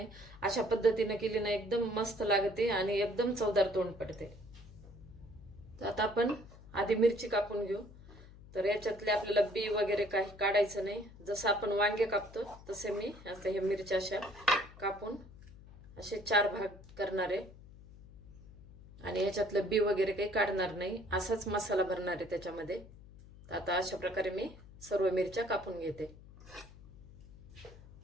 अशा पद्धतीने केली ना एकदम मस्त लागते आणि एकदम चवदार तोंड पडते। तर आता आपण आधी मिरची कापून घेऊ। तर याच्यातले आपल्याला बी वगैरे काही काढायचं नाही। जसं आपण वांगे कापतो तसे मी आता हे मिरच्या अशा कापून असे 4 भाग करणार आहे आणि याच्यातलं बी वगैरे काही काढणार नाही, असाच मसाला भरणार आहे त्याच्यामध्ये। तर आता अशा प्रकारे मी सर्व मिरच्या कापून घेते।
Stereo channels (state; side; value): noise; left; hum, 19 dB below the sound